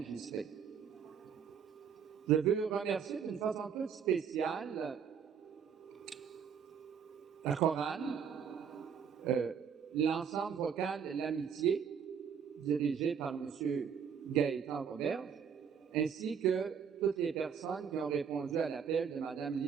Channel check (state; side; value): quieter; left; 7.2 dB